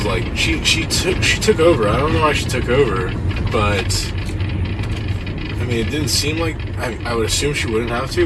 like, she took over. I don't know why she took over, but I mean, it didn't seem like, I would assume she wouldn't have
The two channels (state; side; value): identical; both; correlation 1.00